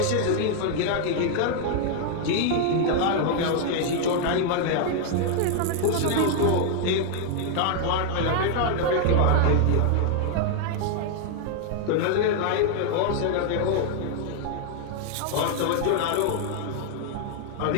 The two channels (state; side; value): different; both; correlation 0.00